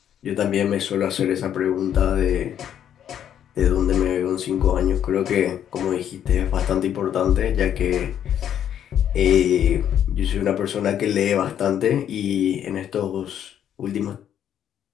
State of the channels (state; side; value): quieter; right; 9.8 dB